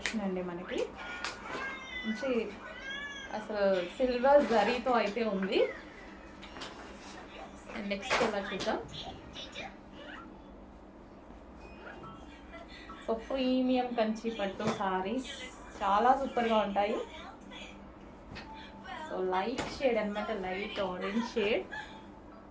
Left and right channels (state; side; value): identical; both; correlation 1.00